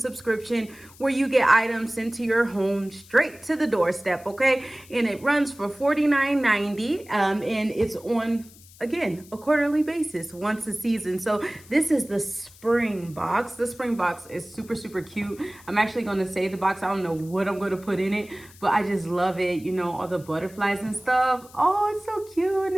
where you get items sent to your home straight to the doorstep, okay? And it runs for $49.90. And it's on, again, a quarterly basis once a season. So this is the spring box. The spring box is super, super cute. I'm actually going to save the box. I don't know what I'm going to put in it, but I just love it. You know, all the butterflies and stuff. Oh, it's so cute and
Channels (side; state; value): left; noise; hiss, 23 dB below the sound